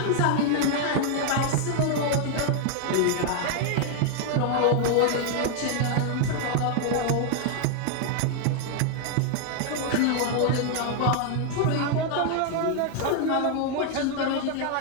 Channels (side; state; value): both; different; correlation 0.00